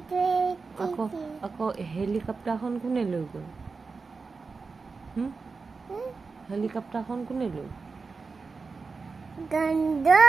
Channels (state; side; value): quieter; left; 4.5 dB